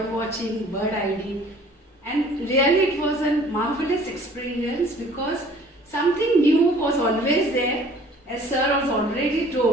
watching, bird ID, and really it was a marvelous experience because something new was always there. As sir was already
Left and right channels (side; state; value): both; normal; correlation 0.53